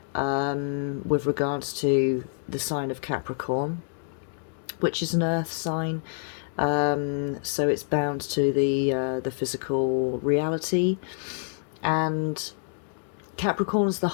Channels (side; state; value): right; silent; digital silence